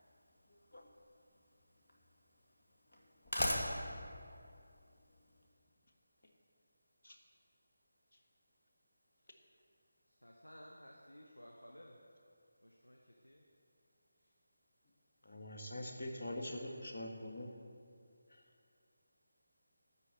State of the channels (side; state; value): both; inverted; correlation -0.91